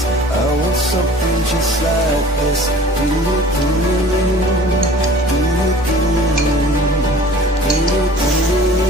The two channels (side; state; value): both; normal; correlation 0.47